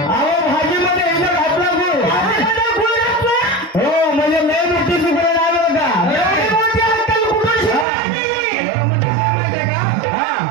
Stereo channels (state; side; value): drops out; left; at 7.9 s